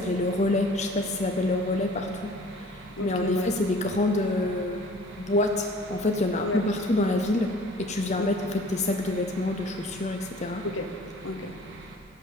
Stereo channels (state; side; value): normal; both; correlation 0.49